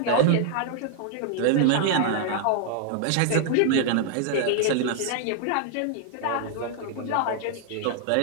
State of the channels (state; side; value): different; both; correlation -0.01